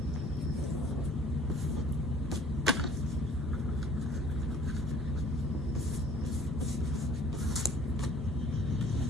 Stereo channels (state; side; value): normal; both; correlation 0.53